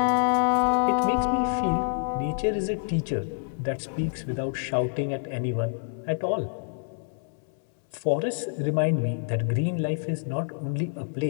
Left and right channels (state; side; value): silent; right; 60 dB below the other